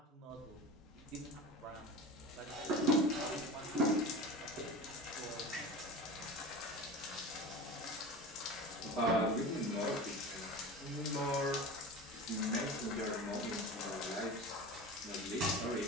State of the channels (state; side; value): normal; both; correlation 0.32